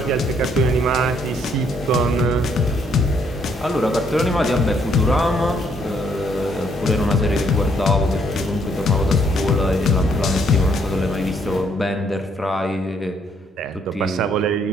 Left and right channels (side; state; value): both; normal; correlation 0.69